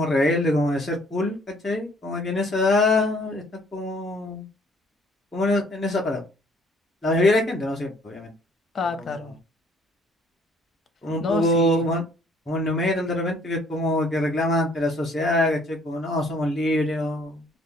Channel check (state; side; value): normal; both; correlation 0.61